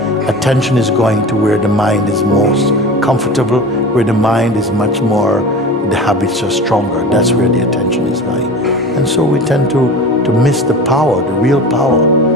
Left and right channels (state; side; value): normal; both; correlation 0.34